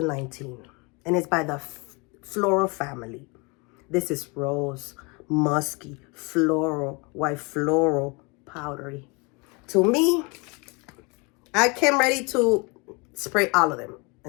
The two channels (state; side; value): quieter; right; 29.3 dB